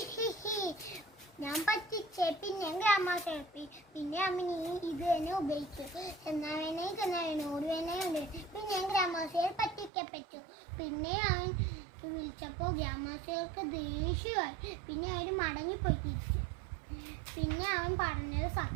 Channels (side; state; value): left; drops out; at 9.9 s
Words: ഹി ഹി, ഞാൻ പറ്റിച്ചേ. പിന്നെ ഗ്രാമവാസികൾ പിന്നെ അവൻ ഇത് തന്നെ ഉപയോഗിച്ചു. ചെന്നാവേനെ ഓടുവേനെ പിന്നെ ഗ്രാമവാസികൾ പറ്റിക്കപ്പെട്ടു. പിന്നെ അവൻ വിളിച്ചപ്പോൾ ഗ്രാമവാസികൾക്ക് ദേഷ്യമായി. പിന്നെ അവർ മടങ്ങിപ്പോയി തിരിച്ചു. പിന്നെ അവൻ പറഞ്ഞത്